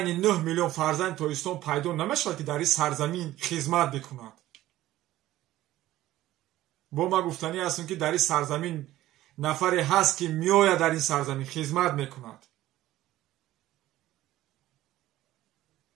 9 میلیون فرزند تویستان پیدا نمیشه که در این سرزمین خدمت بکند. با ما گفتنی هستم که در این سرزمین نفری هست که میآید در این سرزمین خدمت میکند.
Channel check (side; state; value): left; quieter; 15.1 dB